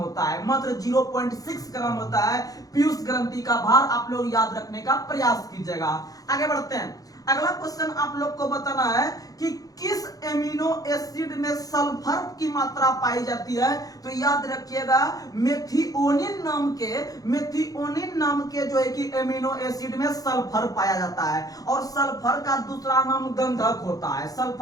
है, मात्र 0.6 ग्राम होता है पीयूष ग्रंथि का भार। आप लोग याद रखने का प्रयास कीजिएगा। आगे बढ़ते हैं। अगला क्वेश्चन आप लोग को बताना है कि किस एमिनो एसिड में सल्फर की मात्रा पाई जाती है। तो याद रखिएगा मेथिओनिन नाम के जो है कि एमिनो एसिड में सल्फर पाया जाता है और सल्फर का दूसरा नाम गंधक होता है।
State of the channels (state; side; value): late; right; 0.17 ms